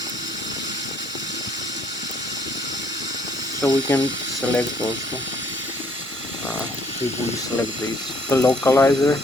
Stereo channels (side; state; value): both; normal; correlation 0.64